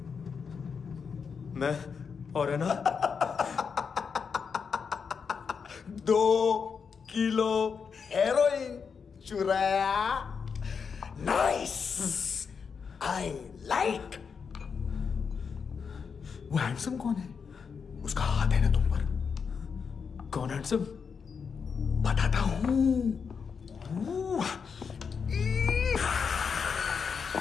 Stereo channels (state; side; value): quieter; right; 6.0 dB